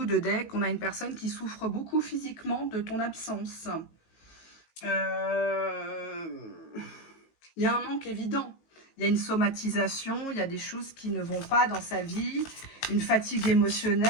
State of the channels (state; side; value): late; right; 18 ms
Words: de deck, on a une personne qui souffre beaucoup physiquement de ton absence. Il y a un manque évident. Il y a une somatisation, il y a des choses qui ne vont pas dans sa vie, une fatigue